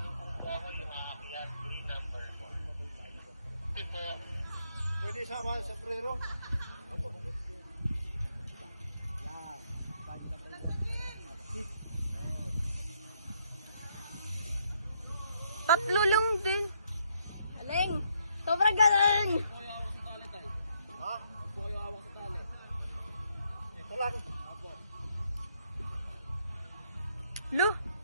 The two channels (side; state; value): both; inverted; correlation -0.73